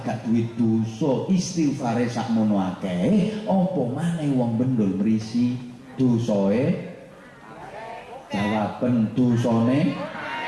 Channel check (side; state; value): both; identical; correlation 1.00